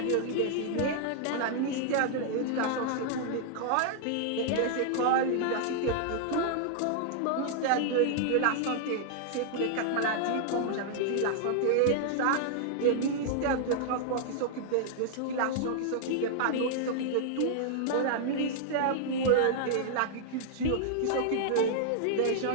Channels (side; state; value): both; different; correlation -0.01